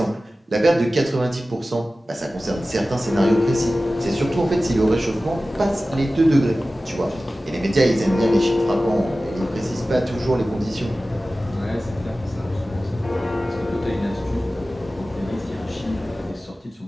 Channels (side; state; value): both; normal; correlation 0.96